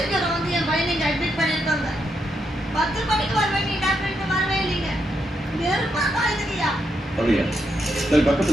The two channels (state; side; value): normal; both; correlation 0.81